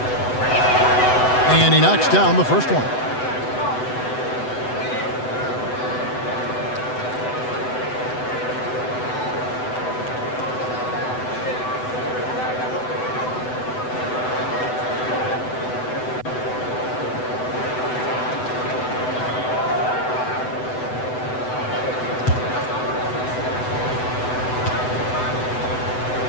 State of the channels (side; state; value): right; late; 7.9 ms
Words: And he knocks down the first one.